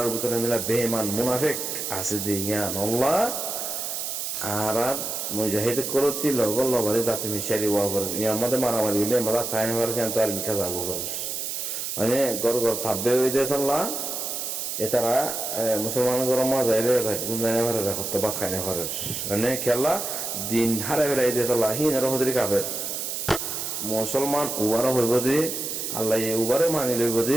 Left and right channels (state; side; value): noise; right; hiss, 4 dB below the sound